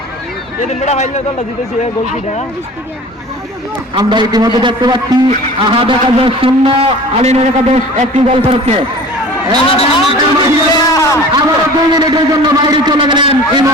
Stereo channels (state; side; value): normal; both; correlation 0.42